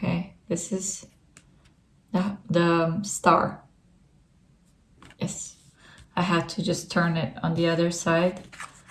this is the Star. Yes, I had to just turn it on the other side.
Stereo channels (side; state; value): both; identical; correlation 1.00